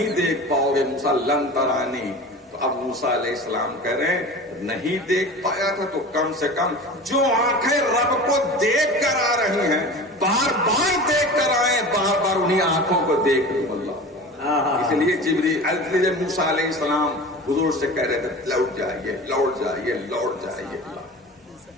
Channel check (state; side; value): normal; both; correlation 0.35